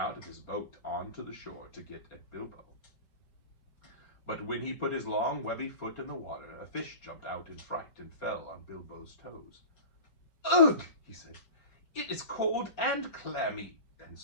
of his boat onto the shore to get at Bilbo. But when he put his long, webby foot in the water, a fish jumped out in fright and fell on Bilbo's toes. Ugh, he said. It is cold and clammy. And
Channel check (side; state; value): right; late; 4.4 ms